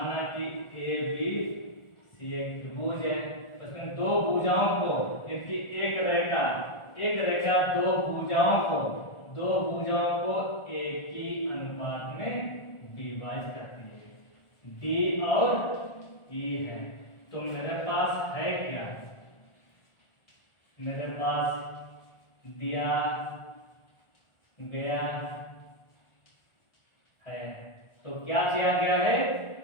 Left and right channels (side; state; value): right; late; 1.4 ms